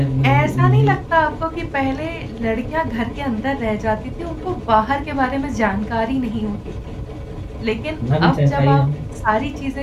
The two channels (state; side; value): identical; both; correlation 1.00